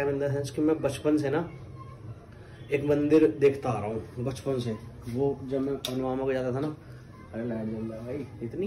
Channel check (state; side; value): identical; both; correlation 1.00